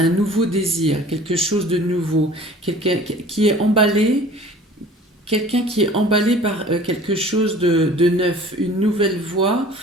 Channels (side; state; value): both; normal; correlation 0.47